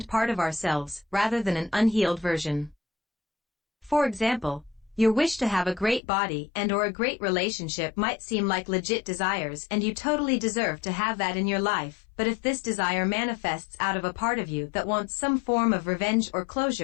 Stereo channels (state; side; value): drops out; right; at 6.0 s